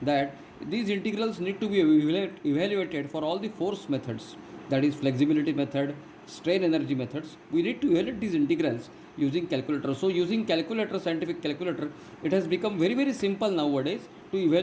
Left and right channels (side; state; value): both; identical; correlation 1.00